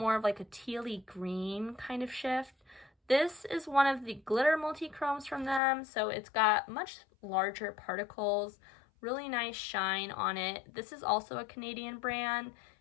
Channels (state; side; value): drops out; right; at 5.6 s